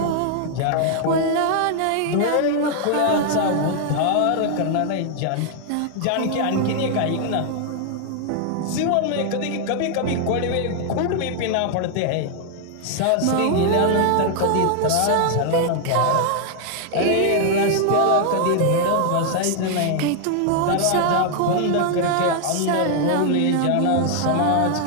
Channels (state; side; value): different; both; correlation 0.00